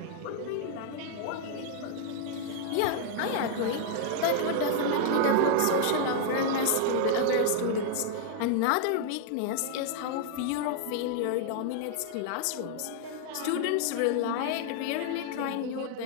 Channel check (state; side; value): different; both; correlation 0.00